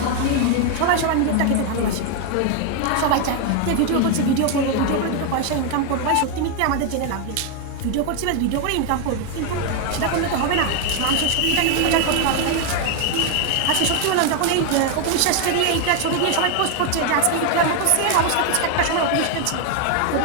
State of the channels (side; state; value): both; different; correlation 0.01